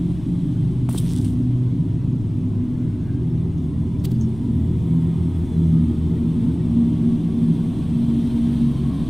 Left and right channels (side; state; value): left; noise; rumble, 15 dB below the sound